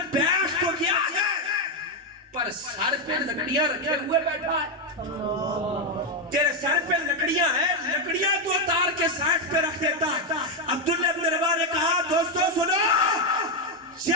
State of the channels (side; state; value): both; normal; correlation 0.04